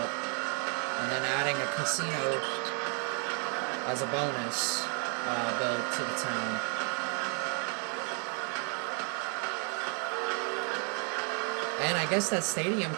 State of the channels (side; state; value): left; quieter; 39.6 dB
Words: And then adding a casino as a bonus build to the town. And I guess that stadium